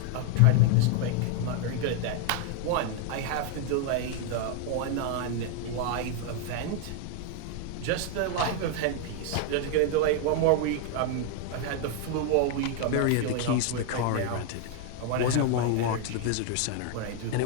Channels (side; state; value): both; different; correlation 0.00